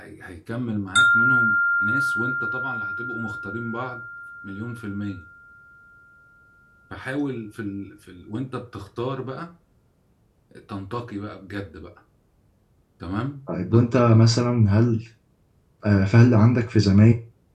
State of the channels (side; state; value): both; identical; correlation 1.00